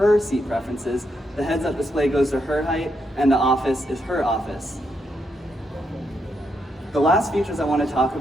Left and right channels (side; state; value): both; normal; correlation 0.80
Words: seat preferences, the heads-up display goes to her height, and the office is her office. The last features I want to talk